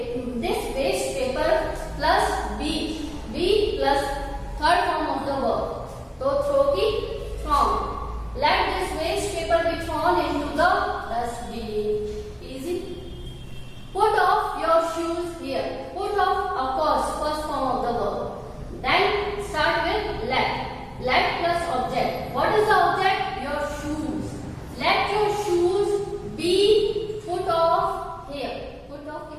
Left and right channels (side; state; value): both; identical; correlation 1.00